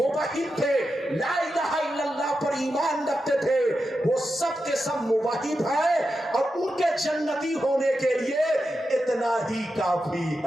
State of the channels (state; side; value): normal; both; correlation 0.89